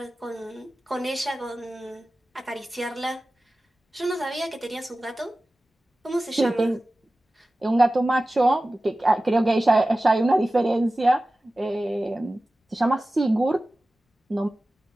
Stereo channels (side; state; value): both; normal; correlation 0.96